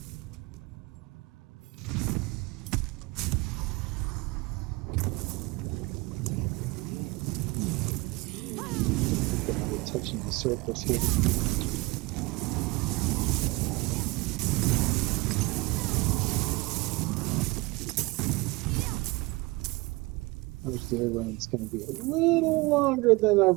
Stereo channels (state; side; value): quieter; left; 23.6 dB